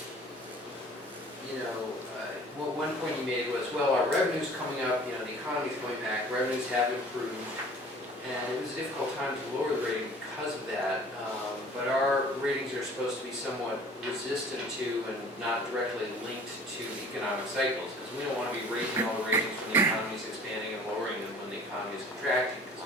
one point he made was, well, our revenue's coming up, the economy's coming back, revenues have improved, and it was a difficult time to lower the rating because of that, but our ratings are supposed to be somewhat resistant to and not directly linked to economic cycles, because we don't want to be raising all the ratings when the economy is expanding and lowering them when the economy is contracting,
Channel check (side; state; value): both; normal; correlation 0.49